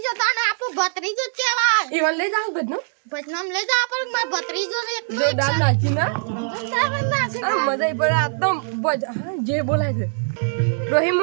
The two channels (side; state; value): left; silent; digital silence